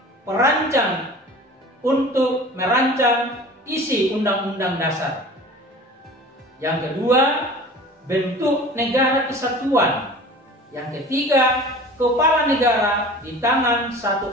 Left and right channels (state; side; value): normal; both; correlation 0.41